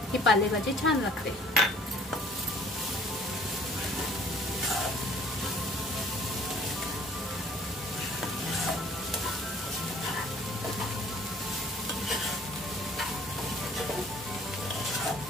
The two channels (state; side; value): normal; both; correlation 0.54